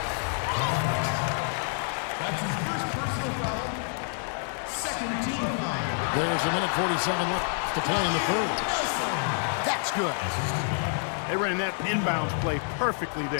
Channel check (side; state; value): right; silent; 59 dB below the other